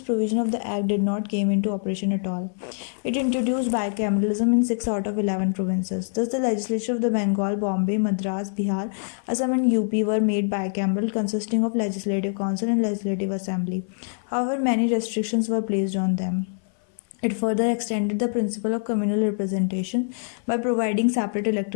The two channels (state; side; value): silent; right; 58 dB below the other